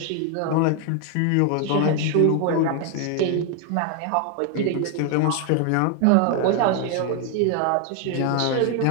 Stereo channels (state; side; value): different; both; correlation 0.01